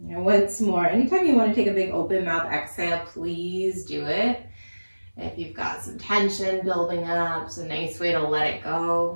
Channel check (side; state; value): both; inverted; correlation -1.00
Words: And once more, anytime you want to take a big open mouth exhale, please do it. If you've got some tension building up, it's a nice way to let it